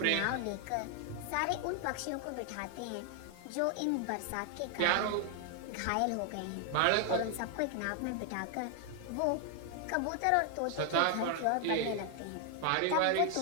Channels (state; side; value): different; both; correlation 0.00